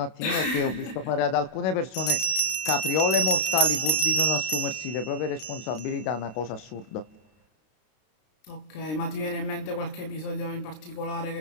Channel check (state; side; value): late; right; 32 ms